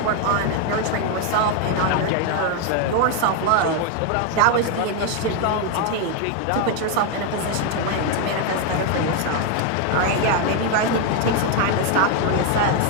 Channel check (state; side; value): different; both; correlation 0.01